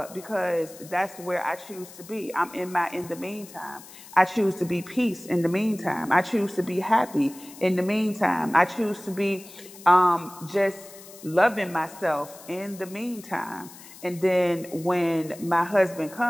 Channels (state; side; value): noise; left; hiss, 18 dB below the sound